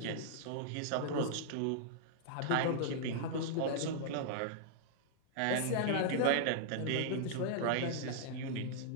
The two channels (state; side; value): different; both; correlation -0.01